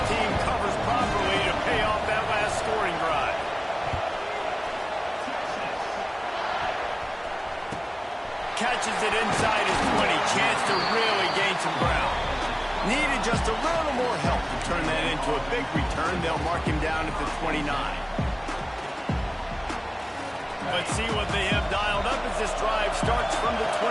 team covers properly to pay off that last scoring drive. Catches it inside his 20. Chance to really gain some ground. Needed just a little more help to turn that into a big return. They'll mark him down at the 29. Let's see what they have dialed up as this drive starts from the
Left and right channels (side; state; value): both; identical; correlation 1.00